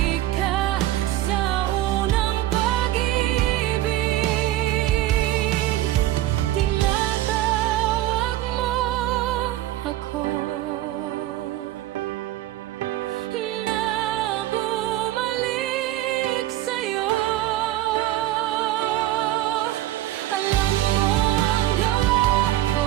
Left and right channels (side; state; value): left; quieter; 14.8 dB